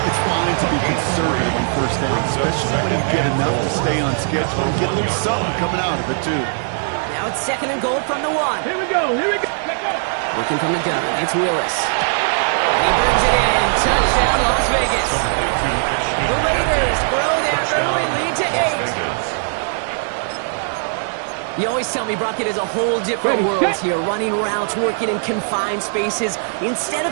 it's fine to be conservative on first down, especially when you get enough to stay on schedule and get a little something coming out of it, too. Now it's 2nd and goal from the 1. Here we go. Working from the gun, it's Willis. And he brings it in. Touchdown, Las Vegas. The Raiders grow their early lead to 8. You always tell me, Brock, it is a whole different world here. Running routes, working in confined spaces, instead of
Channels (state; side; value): silent; left; 66 dB below the other